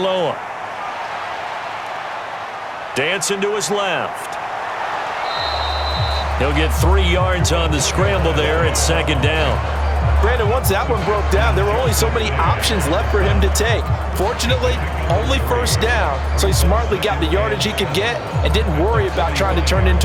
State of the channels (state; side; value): identical; both; correlation 1.00